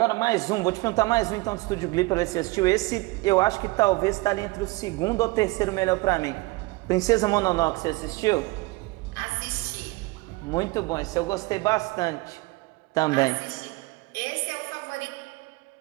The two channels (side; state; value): left; quieter; 23.0 dB